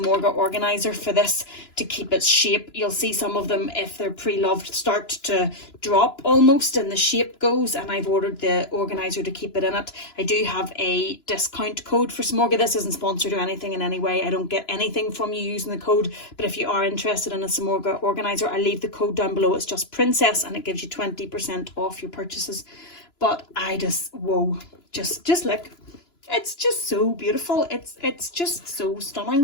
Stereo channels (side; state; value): right; late; 2.9 ms